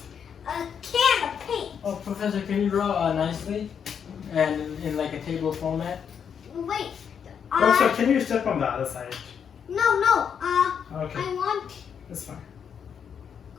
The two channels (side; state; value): right; quieter; 7.5 dB